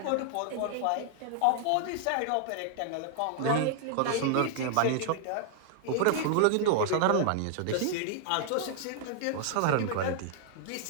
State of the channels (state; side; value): different; both; correlation -0.01